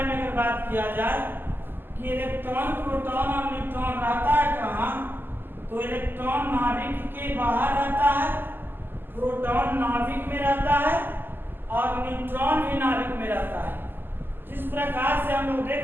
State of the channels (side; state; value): left; late; 0.095 ms